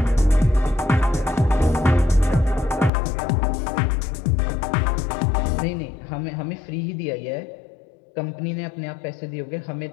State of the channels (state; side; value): drops out; right; at 2.9 s